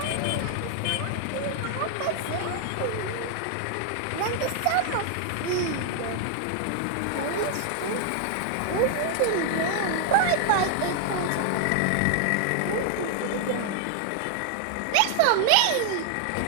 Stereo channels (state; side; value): different; both; correlation 0.00